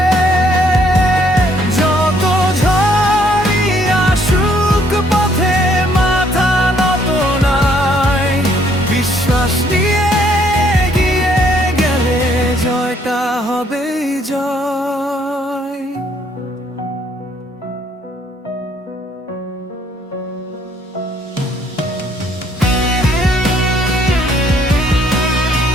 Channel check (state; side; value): normal; both; correlation 0.66